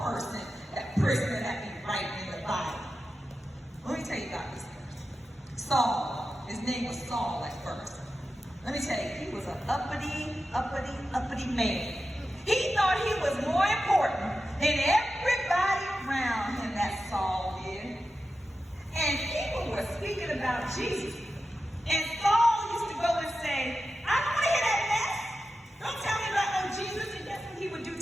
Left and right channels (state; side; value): normal; both; correlation 0.92